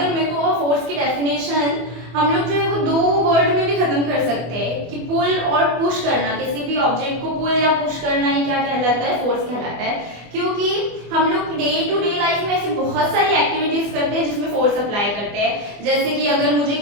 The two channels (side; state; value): left; late; 24 ms